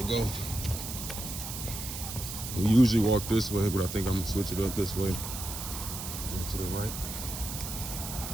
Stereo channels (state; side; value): noise; right; hiss, 7 dB below the sound